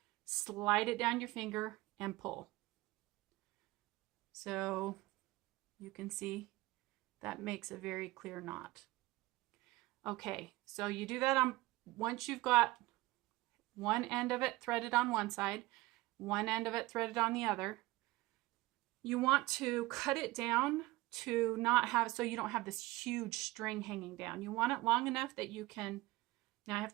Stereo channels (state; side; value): quieter; left; 19.8 dB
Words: slide it down your finger, and pull. So you can see that makes a very clear knot. Okay, so you do that once you've got one end of it threaded on one side, one end of it threaded on the other. You want to cut it down to not have, so you don't have this huge string hanging down. You want it long enough that you can, now I have